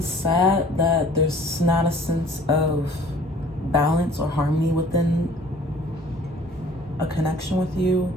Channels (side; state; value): both; normal; correlation 0.51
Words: sad that there's not a sense of balance or harmony within a connection with you,